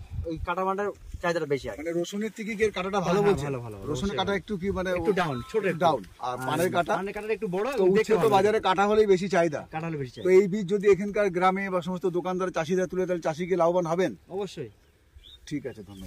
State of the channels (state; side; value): identical; both; correlation 1.00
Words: ওই কাটা পানটার চাহিদাটা বেশি আছে। মানে রসুনের থেকে কি কাটাটা ভালো বলছে? ভালো। রসুনের কাটা একটু কি মানে একটু ডাউন, ছোট ডাউন। আর পানের কাটা একটু বড়। তো বাজারে কাটা হলেই বেশি চাহিদা, কাটা হলে বেশি চাহিদা। তো এই বীজ যদি এখানকার গ্রামে বা সমস্ত দোকানদার চাষিরা তুলে, তাহলে চাষিকে লাভবান হবেন অবশ্যই। ঠিক আছে,